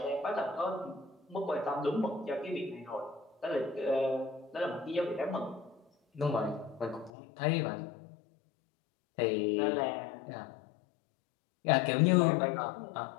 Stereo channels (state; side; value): drops out; right; at 7.1 s